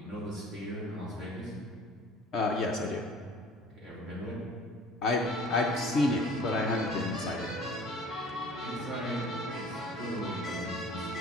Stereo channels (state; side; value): normal; both; correlation 0.48